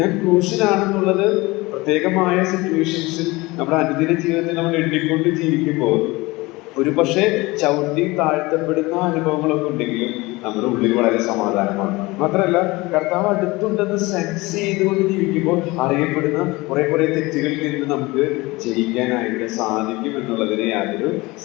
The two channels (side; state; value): right; quieter; 22.1 dB